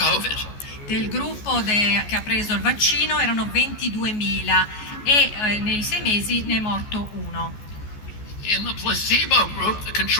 Del gruppo che ha preso il vaccino erano 22.000 e nei 6 mesi ne è morto uno. In the placebo group, the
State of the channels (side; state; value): right; late; 14 ms